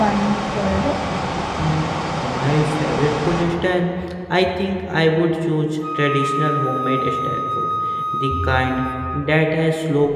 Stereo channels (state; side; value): identical; both; correlation 1.00